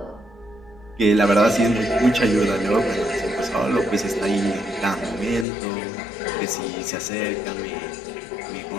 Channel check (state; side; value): drops out; right; at 5.5 s